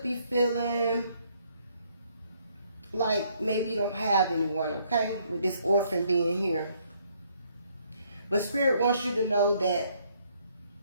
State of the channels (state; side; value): inverted; both; correlation -0.68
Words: be feeling like maybe you don't have anyone, okay, with this orphan being here. But Spirit wants you to know that